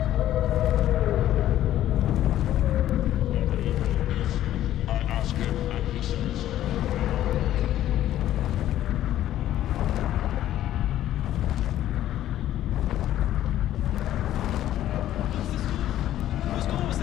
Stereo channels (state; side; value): quieter; right; 12.7 dB